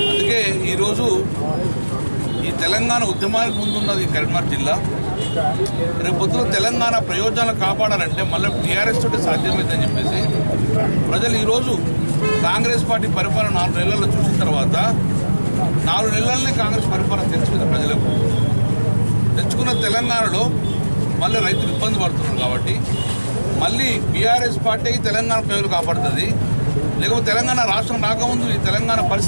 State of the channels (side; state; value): both; inverted; correlation -1.00